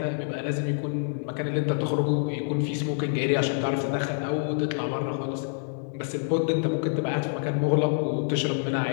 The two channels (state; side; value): silent; right; 60 dB below the other